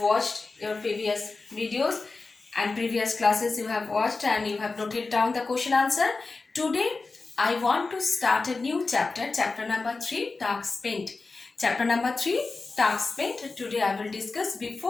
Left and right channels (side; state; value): right; quieter; 3.9 dB